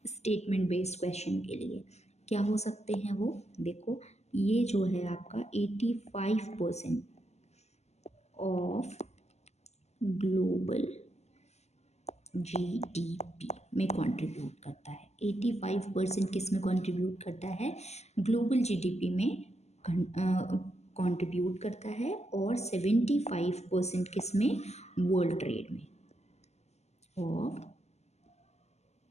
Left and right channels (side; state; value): right; late; 0.32 ms